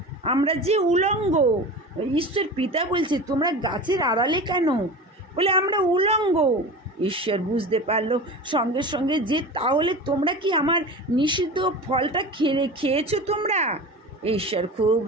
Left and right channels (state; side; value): normal; both; correlation 0.32